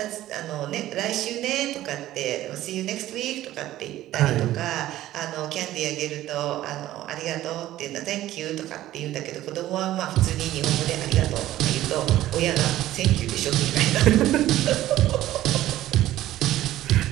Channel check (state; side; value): quieter; left; 14.4 dB